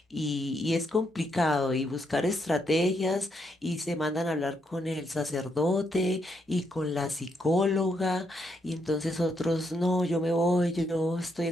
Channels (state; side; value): normal; both; correlation 0.78